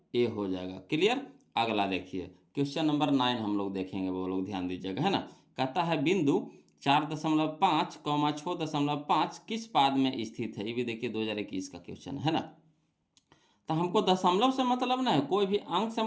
ए हो जाएगा, क्लियर। अगला देखिए क्वेश्चन नंबर 9 हम लोग देखेंगे, वो लोग ध्यान दीजिएगा, है ना। कहता है बिंदु 4.5, 6.5 किस पाद में स्थित है। ये भी देखिए 2021 का क्वेश्चन है ना। तो हमको दशमलव से मतलब ना है, कोई भी अंक से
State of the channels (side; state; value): both; identical; correlation 1.00